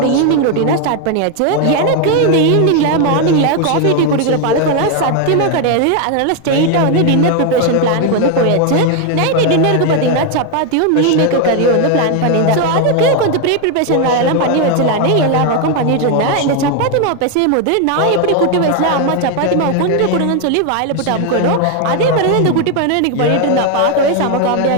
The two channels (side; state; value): both; different; correlation 0.01